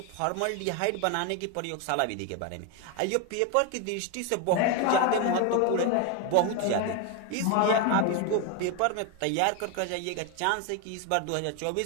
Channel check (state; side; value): different; both; correlation 0.01